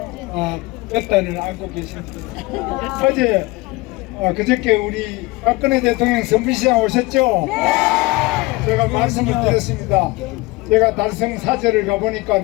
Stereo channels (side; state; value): right; quieter; 22.3 dB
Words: 볕단을 안고 계십니다. 어제 그저께 우리 박근혜 대통령 선비시장 오셨죠? 제가 말씀을 드렸습니다. 제가 달성 사절을 가보니까